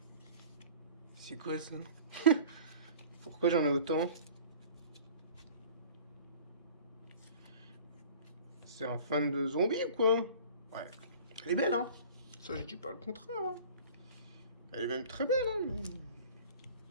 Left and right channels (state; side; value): inverted; both; correlation -0.44